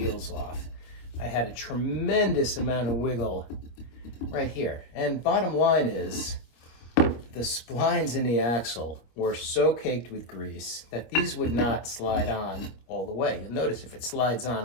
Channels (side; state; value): right; late; 25 ms